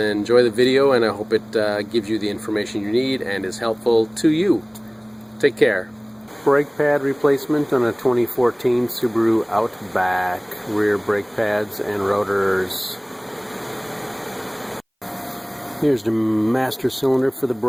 the video, and I hope it gives you the information you need and is helpful to you. Take care. Brake pad replacement on a 2014 Subaru Outback. Rear brake pads and rotors. Here's the master cylinder for the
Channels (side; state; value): both; identical; correlation 1.00